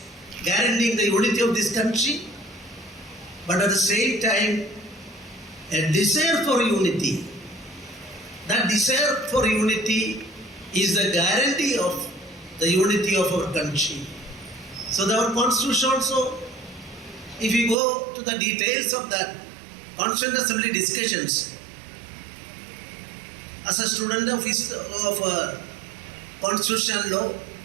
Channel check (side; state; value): left; drops out; at 17.8 s